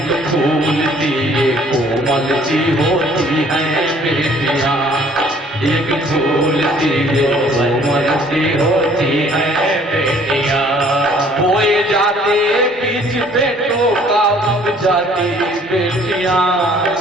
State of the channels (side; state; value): both; normal; correlation 0.57